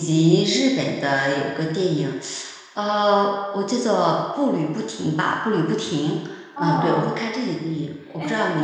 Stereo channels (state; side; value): identical; both; correlation 1.00